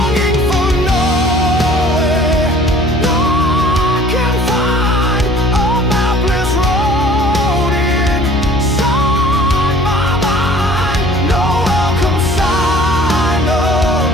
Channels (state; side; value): noise; left; hum, 7 dB below the sound